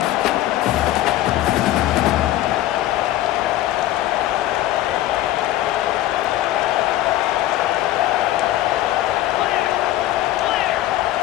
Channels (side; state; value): right; quieter; 14.4 dB